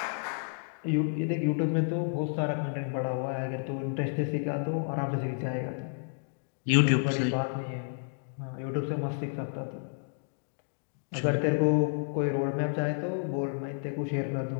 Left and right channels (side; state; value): right; silent; digital silence